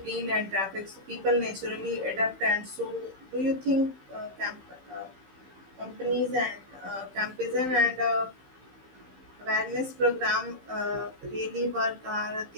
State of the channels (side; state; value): left; late; 15 ms